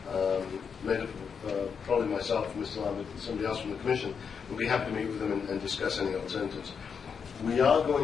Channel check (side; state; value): right; quieter; 6.4 dB